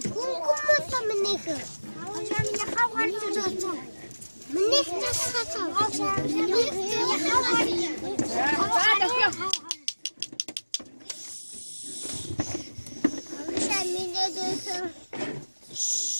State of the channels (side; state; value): both; inverted; correlation -1.00